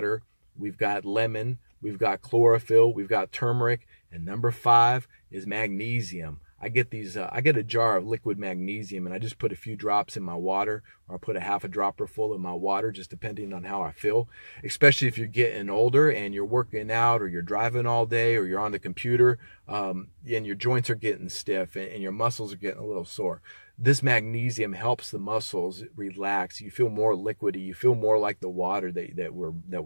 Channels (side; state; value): both; inverted; correlation -1.00